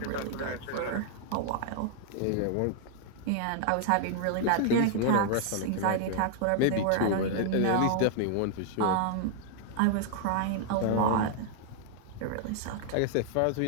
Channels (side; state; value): both; different; correlation 0.00